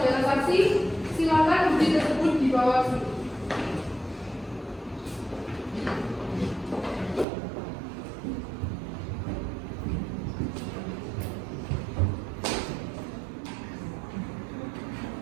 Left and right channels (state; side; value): drops out; left; at 7.2 s